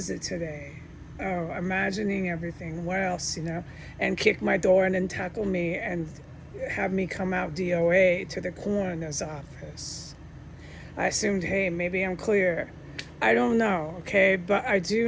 it today? Oh, imagining everything. What else, and kick my door and then tackle me and have me come out DOA to the coroner's office. I assumed, hey, maybe I'm clear. I don't know, okay? But I do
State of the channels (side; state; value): both; identical; correlation 1.00